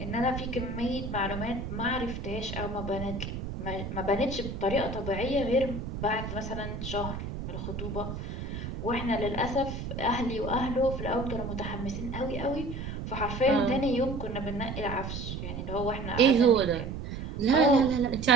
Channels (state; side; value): noise; right; rumble, 6 dB below the sound